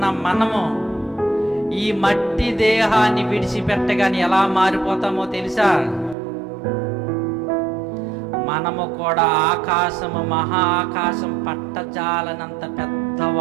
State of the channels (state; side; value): drops out; left; at 6.2 s